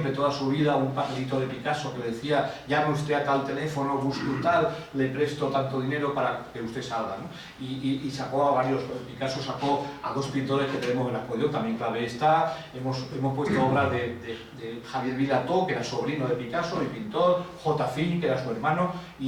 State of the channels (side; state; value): both; identical; correlation 1.00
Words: toda su vida un papelito de Picasso que le decía: llame usted a tal teléfono, busque un tal, le presto tanto dinero para que usted salga, ¿no? Y sacó a varios. Picasso sacó a 2 pintores que tenemos en la exposición, también clave está. Hemos puesto obras de Javier Vilató, que era sobrino de Picasso y pintor, J. Fin, que era su hermano,